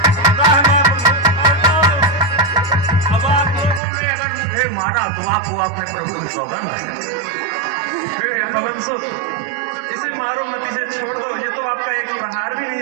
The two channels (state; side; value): drops out; left; at 3.8 s